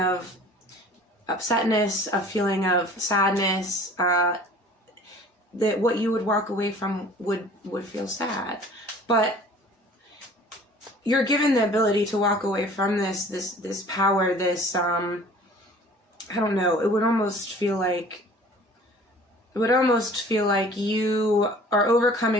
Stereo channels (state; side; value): normal; both; correlation 0.48